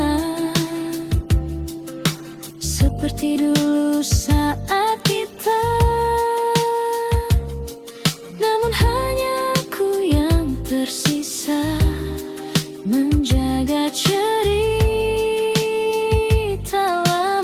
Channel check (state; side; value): identical; both; correlation 1.00